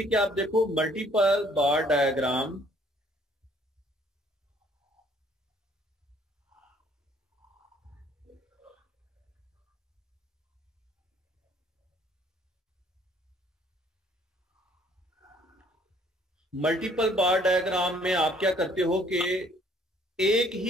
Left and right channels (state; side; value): normal; both; correlation 0.60